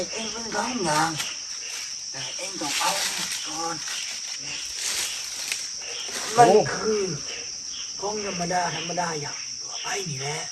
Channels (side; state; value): both; identical; correlation 1.00